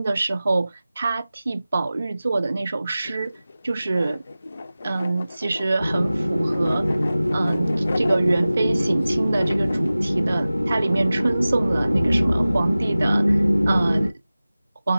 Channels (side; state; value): both; inverted; correlation -0.97